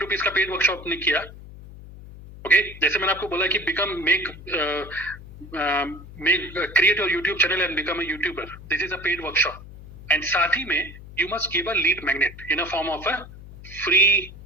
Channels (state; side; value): noise; left; hum, 16 dB below the sound